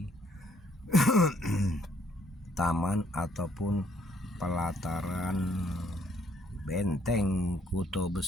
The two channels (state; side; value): normal; both; correlation 0.67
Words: taman ataupun pelataran Benteng Kuto